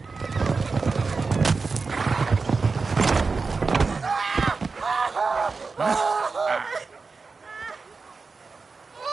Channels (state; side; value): quieter; left; 4.4 dB